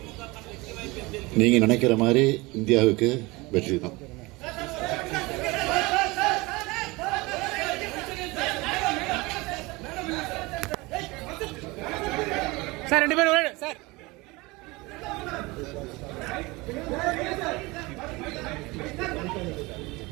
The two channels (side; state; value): left; quieter; 23.4 dB